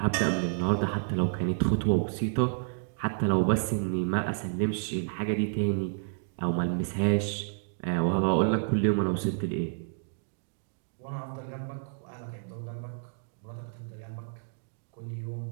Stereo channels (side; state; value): left; silent; digital silence